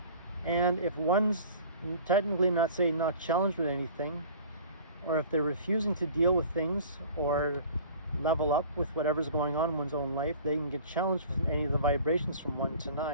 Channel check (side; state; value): both; inverted; correlation -0.45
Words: And if one's technically not challenged with anything, or if they're refusing to deal with things or level up with whatever's going on in one's own life, they can get challenged with any of the vibrations from 1 to